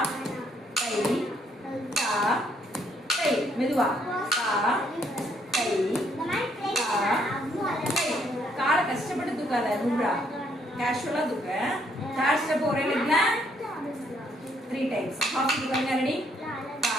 கை கா கை மெதுவா கா கை கா கை காலை கஷ்டப்பட்டு தூக்காத நூறா கேஷுவலா தூக்க தேர்ட் ஸ்டெப் ஒரே லெக்ல 3 டைம்ஸ் ஆப்போசிட் பாருங்க ரெடி கா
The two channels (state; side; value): normal; both; correlation 0.70